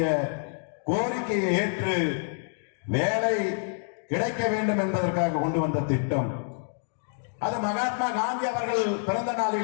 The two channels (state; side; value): silent; right; 60 dB below the other